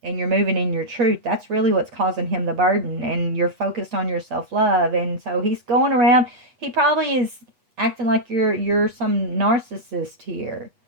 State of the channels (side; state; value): left; late; 8.2 ms